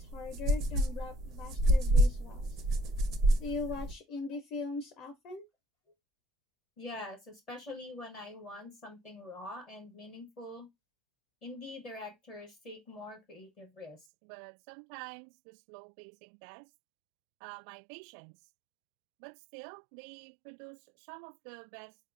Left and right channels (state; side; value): drops out; left; at 14.0 s